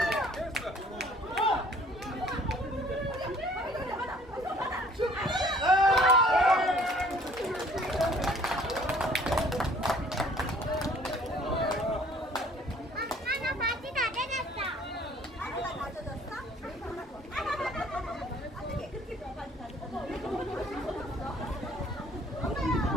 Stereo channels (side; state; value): both; normal; correlation 0.56